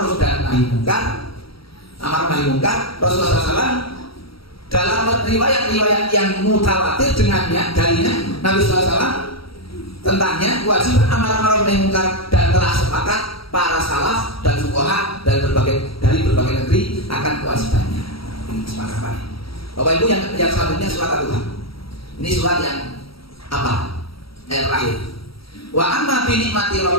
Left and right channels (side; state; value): right; late; 0.75 ms